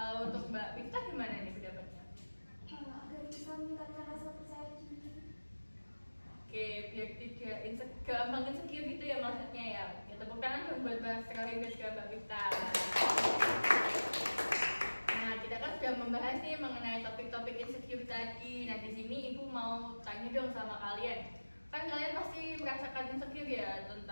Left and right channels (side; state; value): both; inverted; correlation -1.00